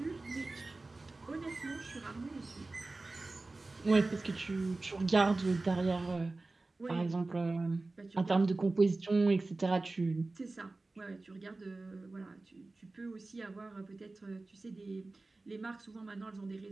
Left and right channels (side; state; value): left; quieter; 3.3 dB